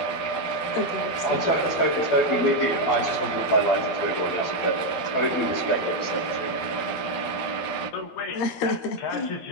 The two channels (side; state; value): right; late; 12 ms